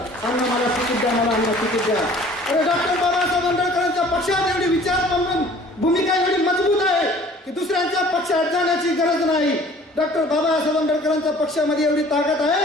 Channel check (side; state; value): both; normal; correlation 0.51